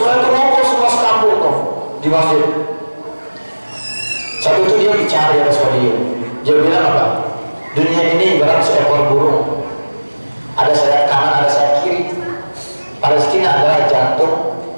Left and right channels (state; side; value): inverted; both; correlation -1.00